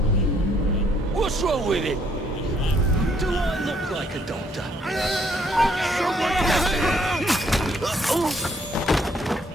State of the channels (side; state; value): both; normal; correlation 0.67